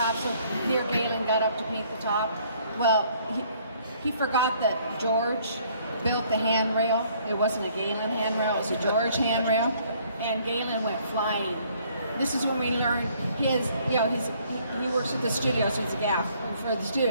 so dear Galen got up to paint the top. Well, he forgot that George built the handrail. It wasn't a Galen handrail, it was a George handrail. And Galen went flying. This is when we learned he works at the studio, so it's a gaff for the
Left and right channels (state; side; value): inverted; both; correlation -0.62